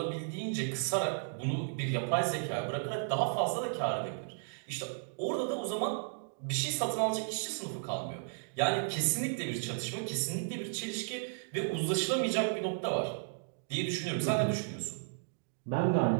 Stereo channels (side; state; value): left; silent; digital silence